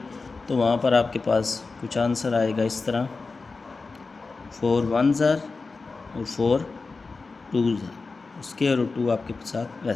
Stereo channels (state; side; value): quieter; right; 4.1 dB